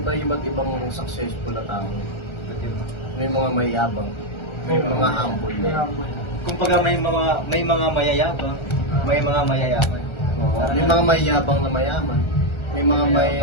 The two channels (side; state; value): right; late; 1.4 ms